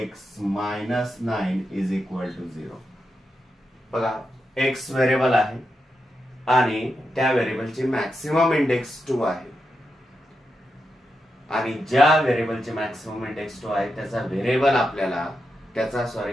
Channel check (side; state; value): both; normal; correlation 0.87